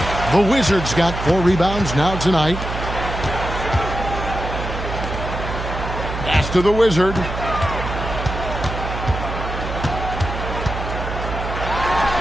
The Wizards got 4 rebounds now tonight. Pass to the Wizard.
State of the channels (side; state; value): right; noise; hum, 6 dB below the sound